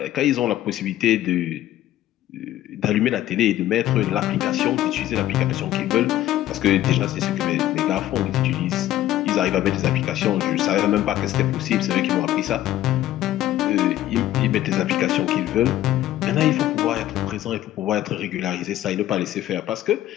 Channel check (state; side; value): quieter; right; 13.8 dB